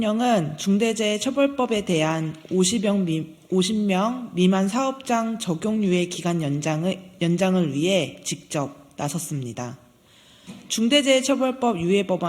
중대재해처벌법에 대한 50명 미만 사업장 적용 유예 기간 연장을 위해 직접 나섰습니다. 중대재해처벌법 유예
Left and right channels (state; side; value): identical; both; correlation 1.00